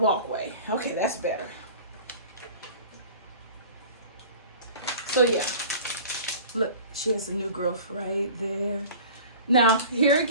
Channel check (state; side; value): inverted; both; correlation -0.42